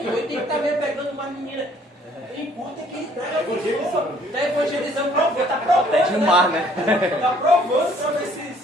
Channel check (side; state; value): both; normal; correlation 0.60